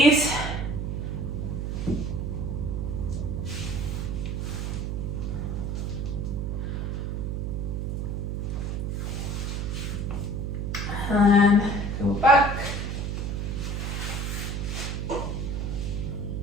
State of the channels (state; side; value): noise; right; hum, 1 dB below the sound